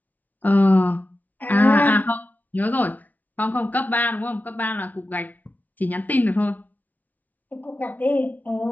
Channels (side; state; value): right; late; 0.078 ms